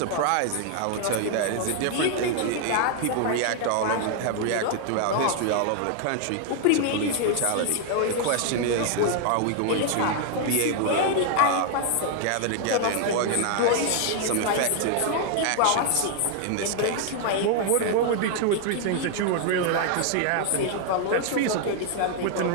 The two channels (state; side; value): different; both; correlation 0.00